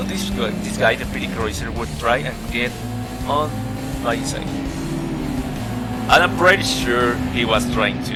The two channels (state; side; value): identical; both; correlation 1.00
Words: this guy, the Pity Cruiser, would try and get on my inside. And I'm pretty sure he was trying